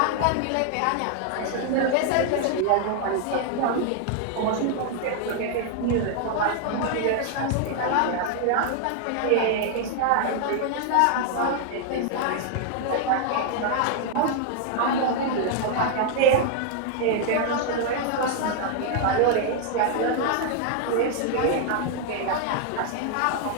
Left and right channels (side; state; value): both; different; correlation 0.00